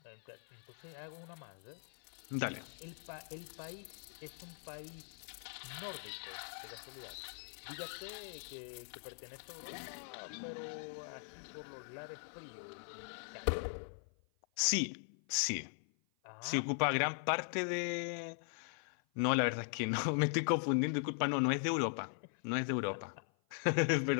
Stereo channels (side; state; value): right; silent; 51 dB below the other